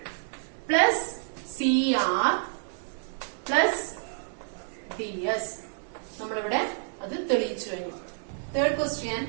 plus CR plus DS. നമ്മളിവിടെ അത് തെളിയിച്ചു കഴിഞ്ഞു. Third question.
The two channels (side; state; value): left; silent; digital silence